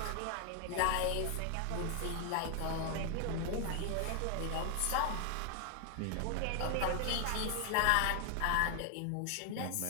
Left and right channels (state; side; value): different; both; correlation 0.00